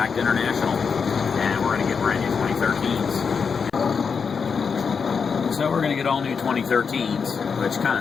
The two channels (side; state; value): right; quieter; 5.8 dB